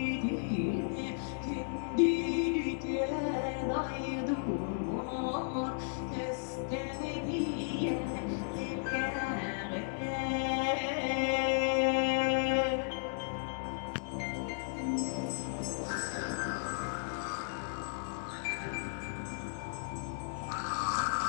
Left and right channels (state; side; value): silent; right; 55 dB below the other